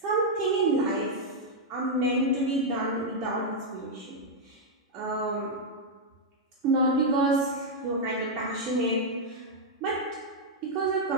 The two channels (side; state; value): both; normal; correlation -0.03